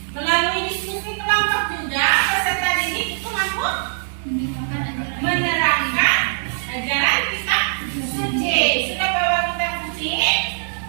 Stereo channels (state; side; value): silent; left; digital silence